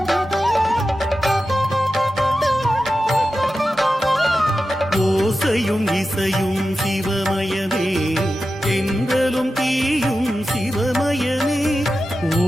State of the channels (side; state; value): both; normal; correlation 0.92